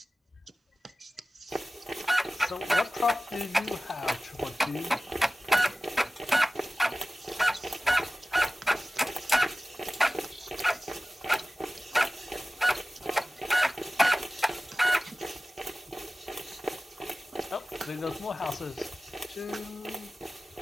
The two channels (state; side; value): normal; both; correlation 0.96